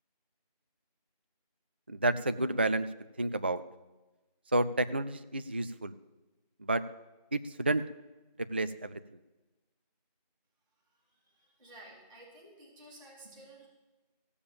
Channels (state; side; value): inverted; both; correlation -0.70